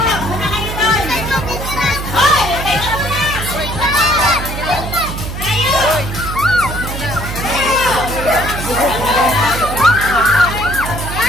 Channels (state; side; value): noise; right; hum, 6 dB below the sound